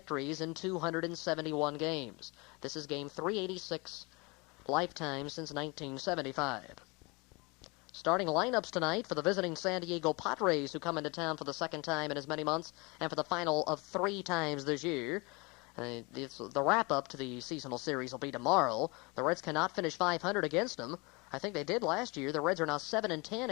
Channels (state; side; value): quieter; right; 27.4 dB